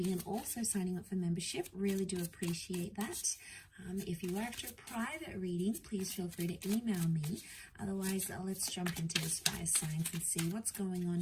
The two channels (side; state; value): both; identical; correlation 1.00